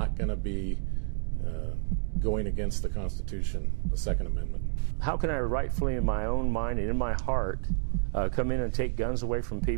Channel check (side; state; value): left; silent; 58 dB below the other